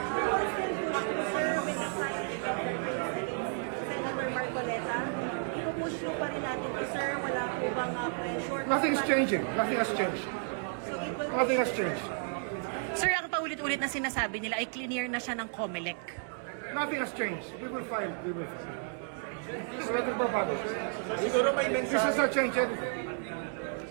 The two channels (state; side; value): silent; left; 56 dB below the other